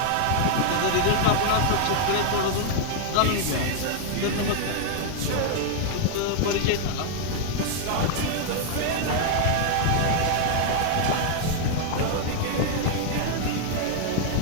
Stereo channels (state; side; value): different; both; correlation 0.00